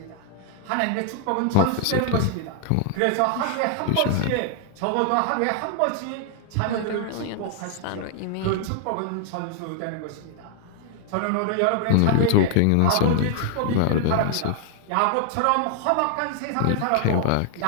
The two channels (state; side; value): different; both; correlation 0.00